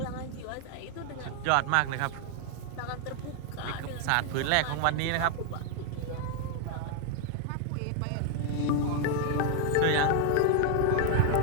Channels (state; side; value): different; both; correlation 0.00